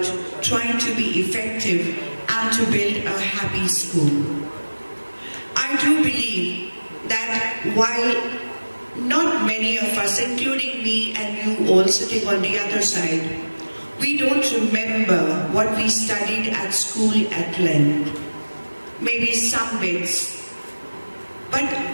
trying to be effective and to build a happy school. I do believe that while not many of us, including me and you all sitting on the other side, we don't remember what we studied at school at length, maybe some bits, but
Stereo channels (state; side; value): inverted; both; correlation -1.00